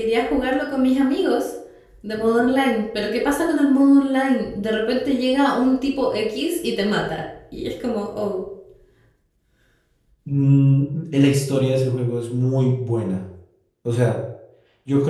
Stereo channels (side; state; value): both; identical; correlation 1.00